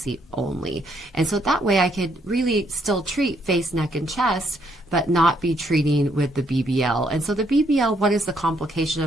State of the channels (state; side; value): normal; both; correlation 0.72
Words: only. And so that way I could really still treat face, neck, and chest, but not be treating with the BBL. And so the BBL, what is the complication?